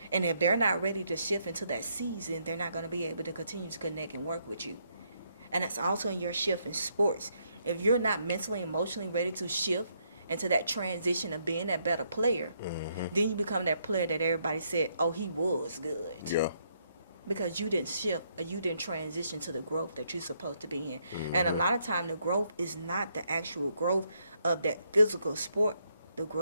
And if they're not ready to shift into that season, they're not going to be able to continue to connect and work with you. And that's also in your shift in sports. If you're not mentally, emotionally ready to shift into that transition of being that better player, then you become that player that everybody said, oh, he was good. Yeah. Because you didn't shift or you didn't transition to the growth that you're supposed to be in. And a lot of time the growth is not the actual growth of that physical sport. The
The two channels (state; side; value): inverted; both; correlation -0.74